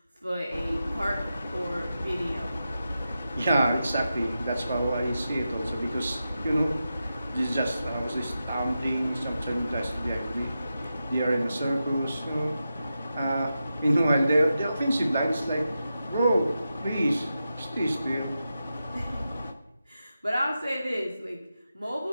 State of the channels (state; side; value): inverted; both; correlation -0.90